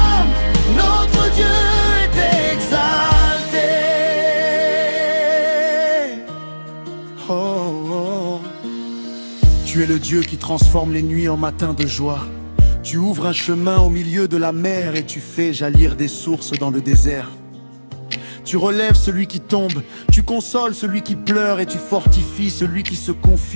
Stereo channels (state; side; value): inverted; both; correlation -1.00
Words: notre Dieu est exalté. Oh, oh. Tu es le Dieu qui transforme les nuits en matins de joie. Tu ouvres un chemin au milieu de la mer et tu fais jaillir des sources dans le désert. Tu relèves celui qui tombe, tu consoles celui qui pleure et tu fortifies celui qui se